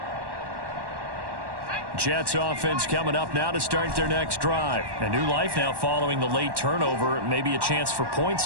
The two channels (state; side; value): late; left; 1.1 ms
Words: Jets offense coming up now to start their next drive. A new life now following the late turnover. Maybe a chance for points